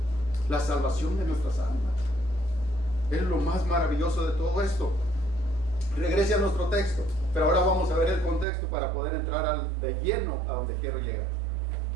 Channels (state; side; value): drops out; left; at 8.5 s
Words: La salvación de nuestras almas es lo más maravilloso de todo esto. Regrese a nuestro texto, pero ahora vamos a ver el contexto para poder entrar de lleno a donde quiero llegar.